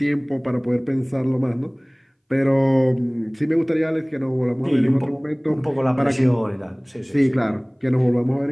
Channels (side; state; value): both; identical; correlation 1.00